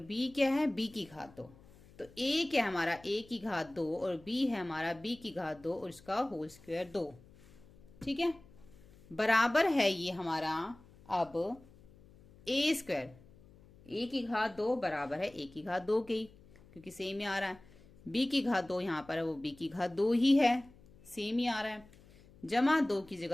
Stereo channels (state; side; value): noise; left; hum, 24 dB below the sound